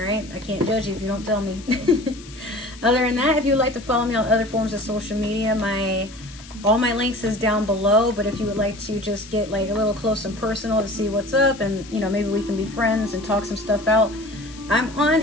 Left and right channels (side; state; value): left; noise; hiss, 19 dB below the sound